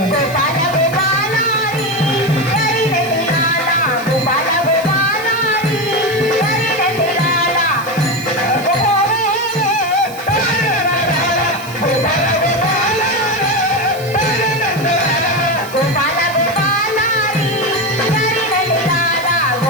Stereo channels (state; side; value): noise; right; hiss, 18 dB below the sound